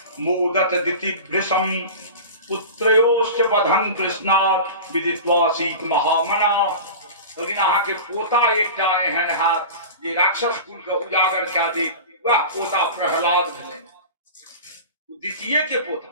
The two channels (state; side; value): inverted; both; correlation -0.32